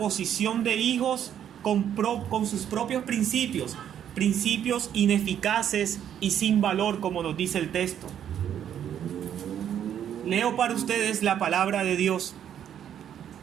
de hijos con sus propios principios ineficaces y sin valor, como nos dice el texto. Leo para ustedes la palabra de Dios.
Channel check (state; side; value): quieter; left; 9.7 dB